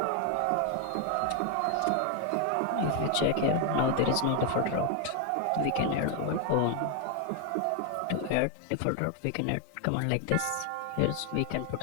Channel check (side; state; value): both; different; correlation 0.00